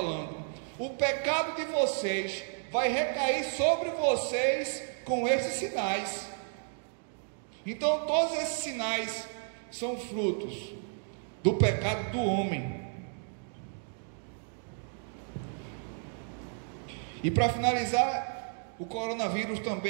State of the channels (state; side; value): silent; left; 56 dB below the other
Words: o pecado de vocês vai recair sobre vocês com esses sinais. Então todos esses sinais são frutos do pecado do homem. E para finalizar, o coronavírus